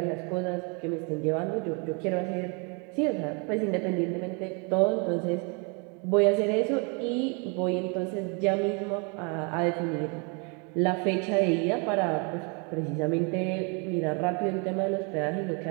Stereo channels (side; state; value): left; quieter; 34.3 dB